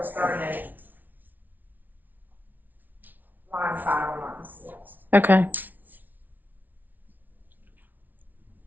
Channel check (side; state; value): left; late; 0.082 ms